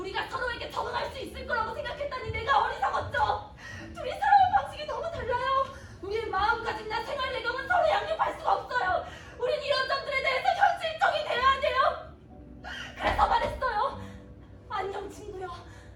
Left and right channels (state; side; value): identical; both; correlation 1.00